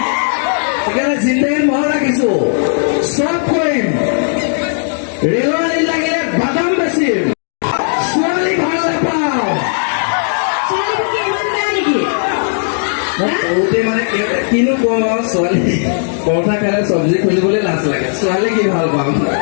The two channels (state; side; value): silent; right; digital silence